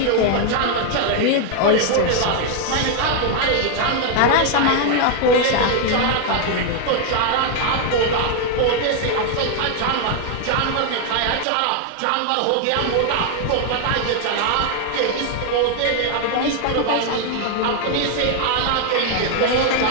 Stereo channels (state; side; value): different; both; correlation 0.00